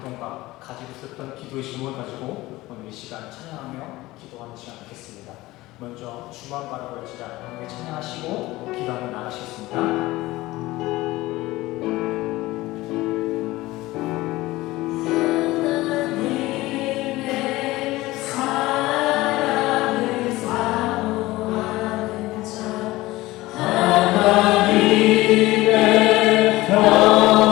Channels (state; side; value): quieter; right; 18.7 dB